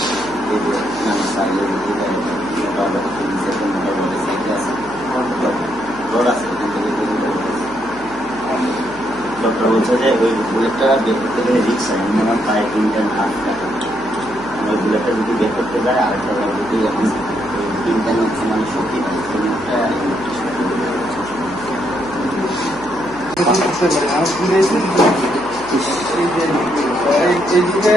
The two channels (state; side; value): noise; right; hum, 20 dB below the sound